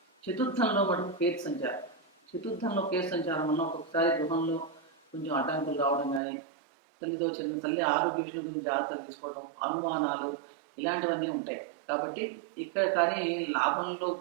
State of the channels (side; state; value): left; drops out; at 6.2 s